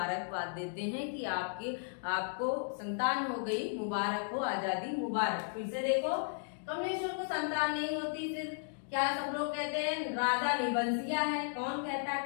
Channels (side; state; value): right; silent; digital silence